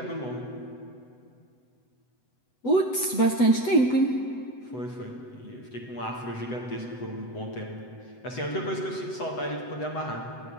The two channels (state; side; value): late; right; 8.0 ms